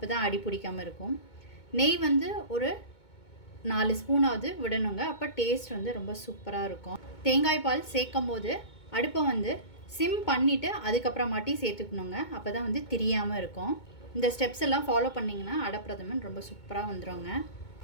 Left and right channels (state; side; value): late; right; 2.2 ms